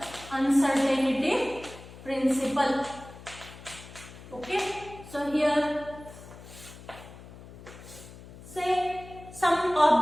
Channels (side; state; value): left; noise; hum, 17 dB below the sound